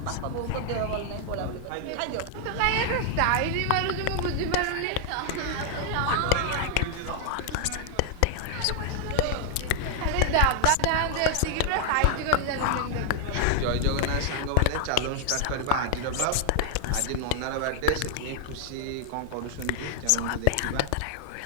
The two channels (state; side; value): different; both; correlation 0.00